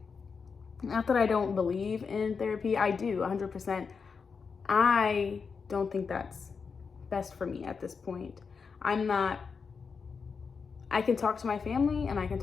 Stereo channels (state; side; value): quieter; right; 5.4 dB